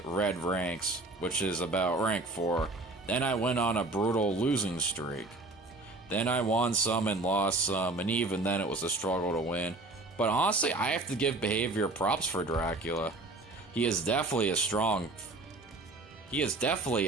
red ranks, which is about rank 4. Then I went on a brutal losing streak. Then I won some and lost some, and even then it was a struggle to win. But honestly, I have to give behavior props for Dracula. He is definitely a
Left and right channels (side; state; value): left; quieter; 3.0 dB